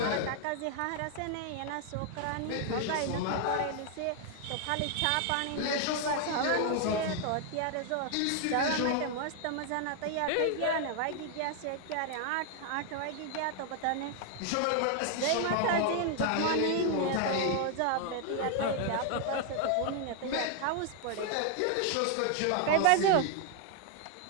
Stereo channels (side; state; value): both; different; correlation 0.00